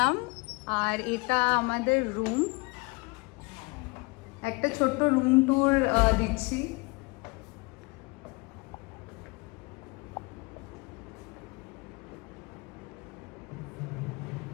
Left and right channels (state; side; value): quieter; right; 27.0 dB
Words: আর এটা আমাদের রুম। একটা ছোট্ট রুম ট্যুর দিচ্ছি।